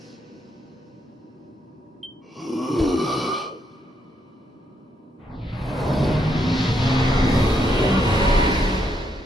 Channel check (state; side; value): normal; both; correlation 0.76